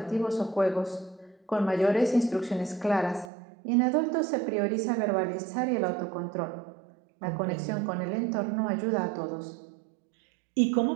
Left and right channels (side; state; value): left; drops out; at 3.3 s